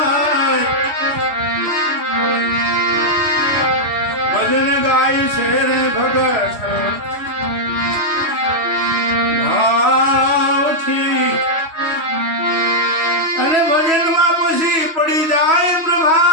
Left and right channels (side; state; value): left; late; 3.1 ms